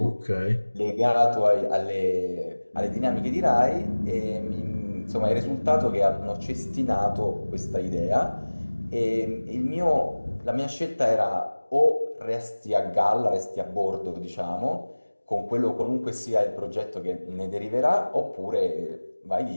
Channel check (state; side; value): inverted; both; correlation -1.00